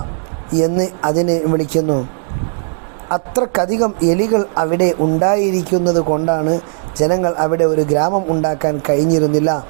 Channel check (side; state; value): left; silent; digital silence